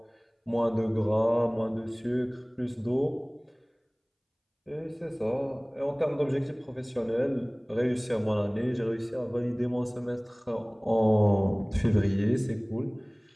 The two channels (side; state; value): both; identical; correlation 1.00